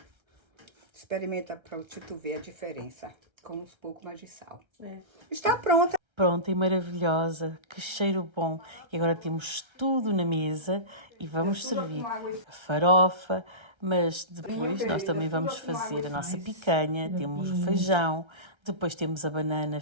Experimenta para tu ver a diferença, com um pouco mais de sal. Está pronta. Pronta e maravilhosa, que cheiro bom. E agora temos tudo na mesa e vamos servir a farofa, mas depois nós também vamos fazer a nossa picanha, temos o feijão, depois temos a banana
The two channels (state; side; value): late; left; 1.3 ms